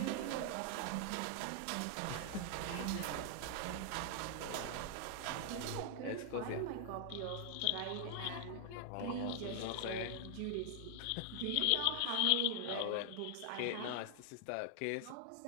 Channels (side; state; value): both; different; correlation 0.00